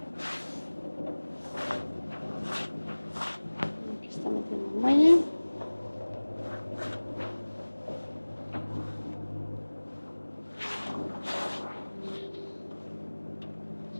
Aquí está metiendo un muelle.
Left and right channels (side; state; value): both; inverted; correlation -1.00